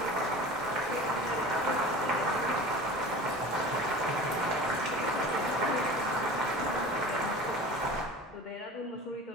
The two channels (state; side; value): normal; both; correlation 0.37